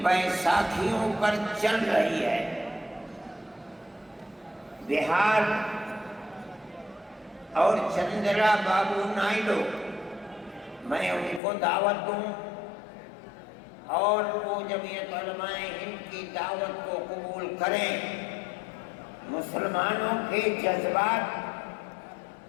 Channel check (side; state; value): right; drops out; at 11.4 s